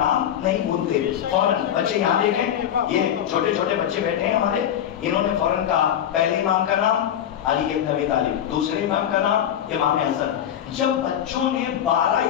نہیں بھولتے. فوراً بچے یہاں دیکھیں یہ چھوٹے چھوٹے بچے بیٹھے ہیں ہمارے. انہوں نے فوراً کہا پہلے امام کا نام علی بن ابی طالب, دوسرے امام کا نام امام حسن. جب بچوں نے 12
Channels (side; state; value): right; quieter; 10.1 dB